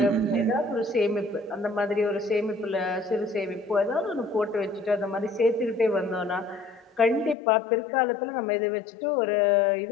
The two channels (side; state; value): right; drops out; at 7.4 s